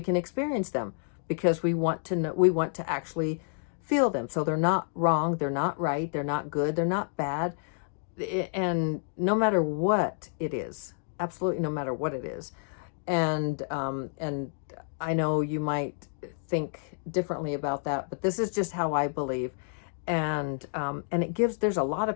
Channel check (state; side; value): silent; right; digital silence